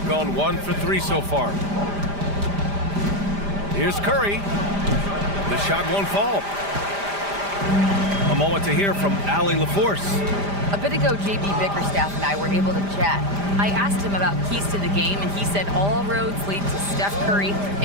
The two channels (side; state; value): left; late; 5.0 ms